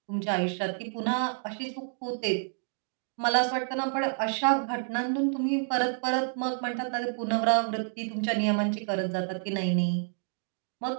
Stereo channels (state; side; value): silent; left; 58 dB below the other